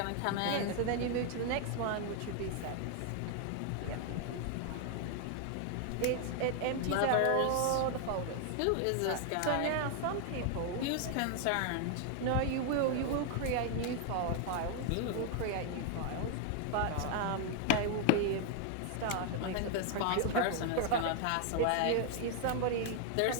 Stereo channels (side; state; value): both; different; correlation 0.00